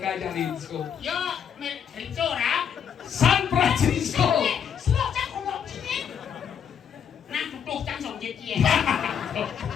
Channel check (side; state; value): right; quieter; 8.0 dB